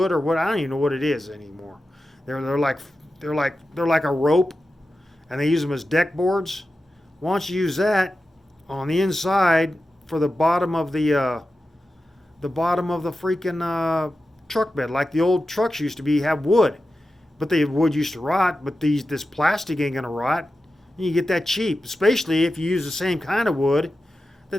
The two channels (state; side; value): normal; both; correlation 0.92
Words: or what, I don't even know what it is anymore. They're like a rope, and they use them as deck boards. Why don't you use that on the inside for the bottom of the freaking truck bed, like the old trucks used to have wood, but the wood used to rot. But this plastic ain't gonna rot. And you get that cheap, especially if you use the same kind of wood